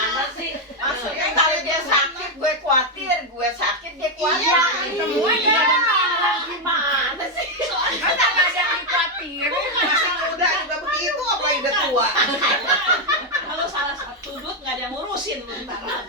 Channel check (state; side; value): normal; both; correlation 0.03